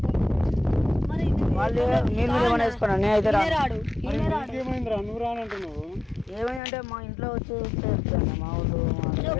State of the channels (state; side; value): drops out; right; at 6.6 s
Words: మరి వాళ్ళు మీరు ఏమైనా వేసుకున్నా, నేనైతే రాడు ఈయనే రాడు. ఏమైందిరా నువ్వు రానంటున్నావు? ఏమైందంటే మా ఇంట్లో వచ్చి చెప్తాను మా ఊళ్ళు